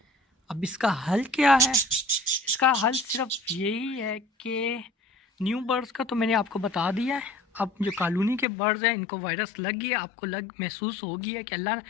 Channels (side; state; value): right; drops out; at 8.5 s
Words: अब इसका हल क्या है? इसका हल सिर्फ यही है कि न्यू बर्ड्स का तो मैंने आपको बता दिया है। अब जो कॉलोनी के बर्ड्स हैं इनको वायरस लग गया, आपको महसूस हो गया कि अल्लाह,